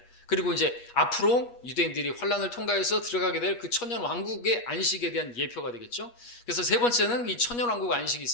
그리고 이제 앞으로 유대인들이 환란을 통과해서 들어가게 될 그 천년 왕국의 안식에 대한 예표가 되겠죠. 그래서 세 번째는 이 천년 왕국 안식이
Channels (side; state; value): right; late; 8.4 ms